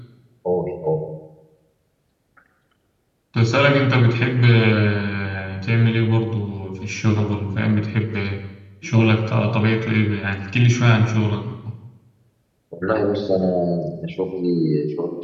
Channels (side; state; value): both; identical; correlation 1.00